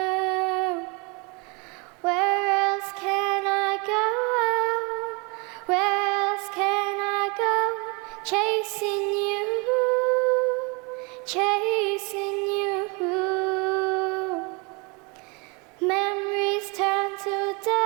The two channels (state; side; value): quieter; left; 30.4 dB